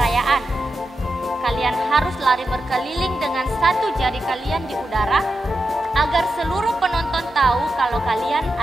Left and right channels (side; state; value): both; normal; correlation 0.89